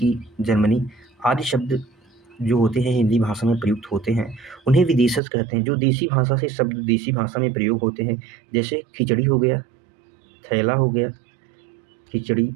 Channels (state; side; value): drops out; left; at 5.2 s